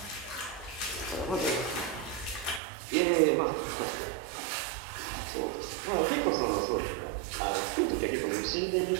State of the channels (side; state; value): left; drops out; at 2.6 s